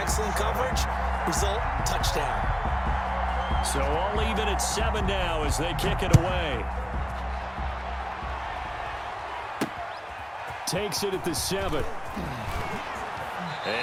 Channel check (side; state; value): both; identical; correlation 1.00